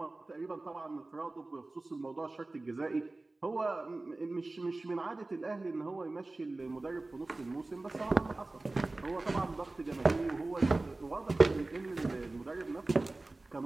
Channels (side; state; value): left; quieter; 3.1 dB